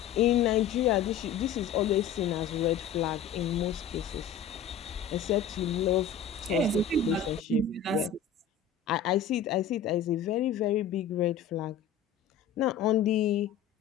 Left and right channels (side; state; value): right; quieter; 7.4 dB